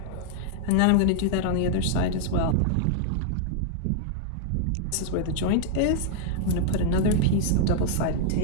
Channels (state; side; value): different; both; correlation -0.01